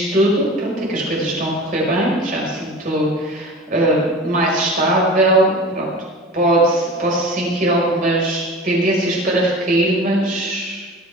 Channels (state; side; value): normal; both; correlation 0.36